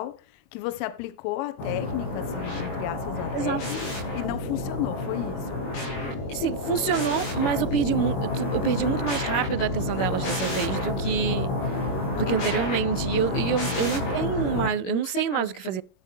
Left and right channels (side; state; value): right; late; 21 ms